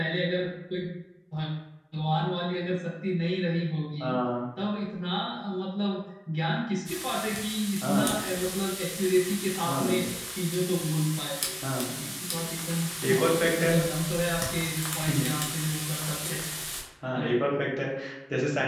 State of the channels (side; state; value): both; identical; correlation 1.00